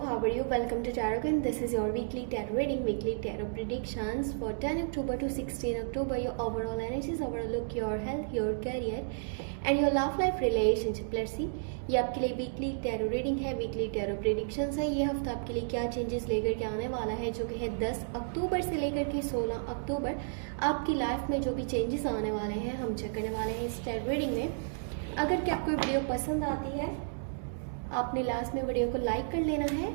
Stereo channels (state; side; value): silent; left; digital silence